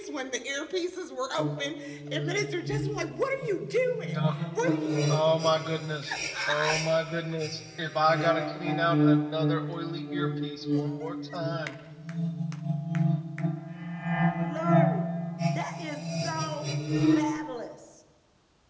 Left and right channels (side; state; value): both; identical; correlation 1.00